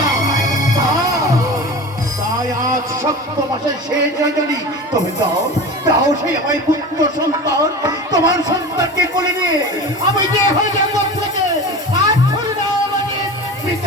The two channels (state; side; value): normal; both; correlation 0.32